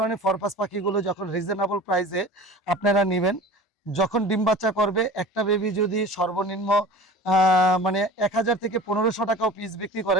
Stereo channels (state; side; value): normal; both; correlation 0.38